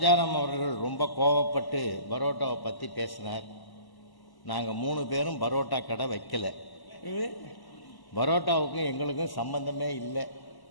அவர்கள் ரொம்ப கோவப்பட்டு பரோட்டாவை பற்றி பேசினார். நாங்கள் 3 பேரும் பரோட்டா கடை வைக்கல. பரோட்டாவுக்கும் எங்களுக்கும் சம்பந்தமே இல்லை.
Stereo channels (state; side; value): late; right; 1.0 ms